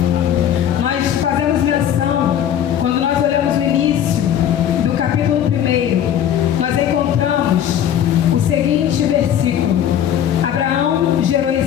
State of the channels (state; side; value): quieter; right; 10.0 dB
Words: Nós fazemos menção, quando nós olhamos o início do capítulo 1, nós encontramos o seguinte versículo: Abraão gerou